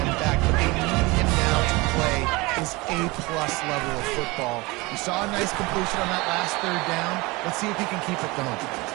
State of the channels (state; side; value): quieter; left; 23.7 dB